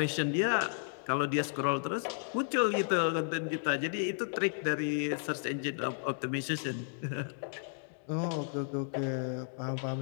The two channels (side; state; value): right; silent; digital silence